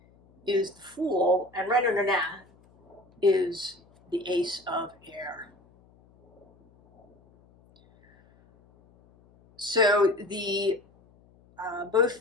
is the Fool, and right under that is the Ace of Air. So both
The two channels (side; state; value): left; noise; hum, 30 dB below the sound